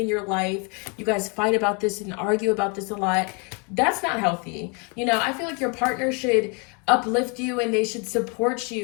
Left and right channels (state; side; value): quieter; right; 33.8 dB